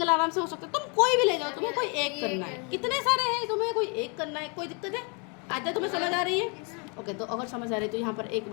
आराम से हो सकता है। तुम कोई भी ले जाओ, तुम्हें कोई एक करना है, कितने सारे हैं, तुम्हें कोई एक करना है, कोई दिक्कत है? आजा तुम्हें समझ आ रही है? ओके, तो अगर समझ आ रही है तो यहाँ पर एक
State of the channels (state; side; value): quieter; right; 34.5 dB